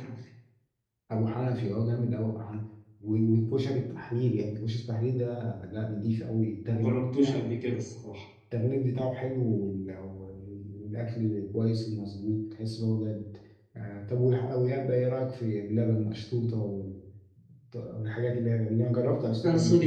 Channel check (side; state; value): both; identical; correlation 1.00